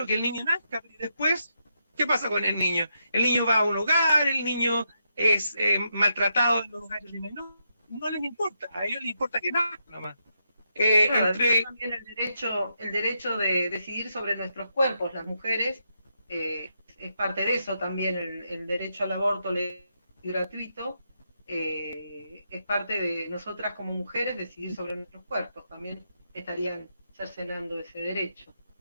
que el niño nazca, y después, ¿qué pasa con el niño? El niño va a un hogar, el niño es maltratado en los hogares de menores, no les importa, a ellos les importa que nazca nomás. También el derecho de decidir sobre nuestros cuerpos, las mujeres, es parte de eso también, el derecho al aborto legal y gratuito, es parte de nosotras como mujeres decidir sobre nuestros cuerpos, también estarían cercenando ese derecho.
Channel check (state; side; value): inverted; both; correlation -0.82